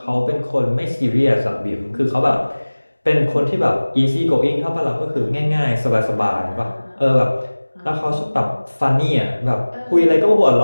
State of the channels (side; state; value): both; inverted; correlation -1.00